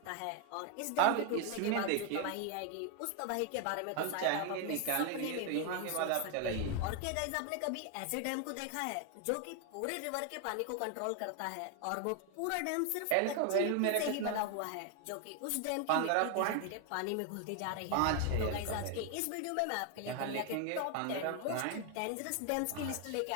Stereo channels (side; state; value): both; different; correlation 0.01